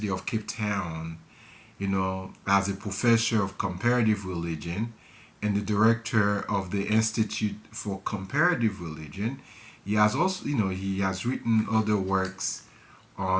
of Cape Town. as a professor of comparative religion and the director of the Institute for Comparative Religion. He has also, he has written other works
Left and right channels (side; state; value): both; identical; correlation 1.00